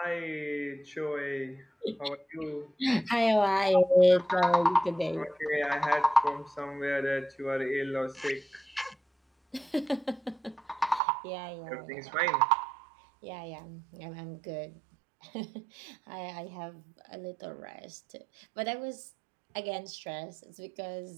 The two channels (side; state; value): left; drops out; at 11.0 s